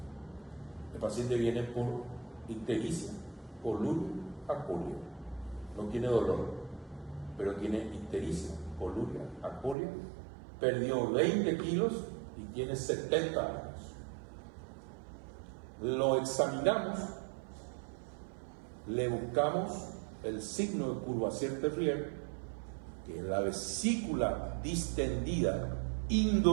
el paciente viene por ictericia, coluria, acolia. No tiene dolor, pero tiene ictericia, coluria, acolia. Perdió 20 kilos y tiene 70 años. Lo examinamos, le buscamos el signo de Courvoisier-Terrier, que es la vesícula distendida,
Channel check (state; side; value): drops out; left; at 9.8 s